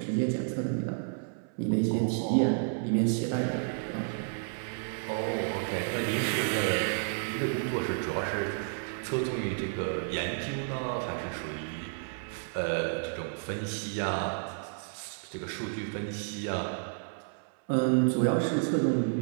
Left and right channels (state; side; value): silent; left; 57 dB below the other